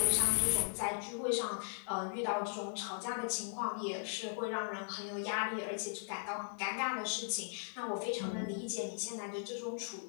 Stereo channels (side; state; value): right; silent; 52 dB below the other